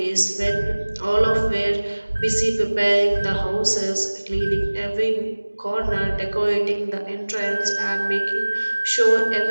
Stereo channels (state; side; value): inverted; both; correlation -1.00